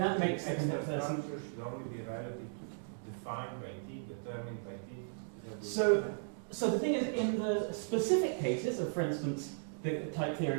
makes the extra person. structure should only be relative to defined by t, determined by t. So the thing is, in the specific cases of, for instance, the type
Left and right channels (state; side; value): silent; left; digital silence